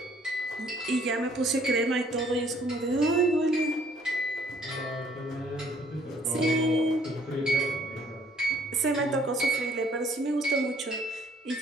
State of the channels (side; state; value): both; normal; correlation 0.62